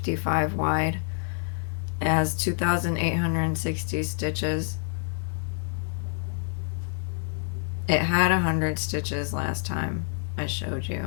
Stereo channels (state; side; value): silent; right; 60 dB below the other